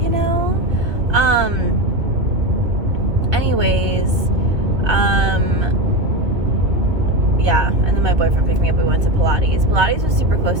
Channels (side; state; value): left; late; 2.3 ms